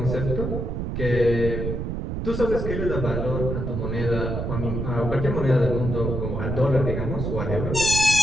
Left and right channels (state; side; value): noise; right; rumble, 3 dB below the sound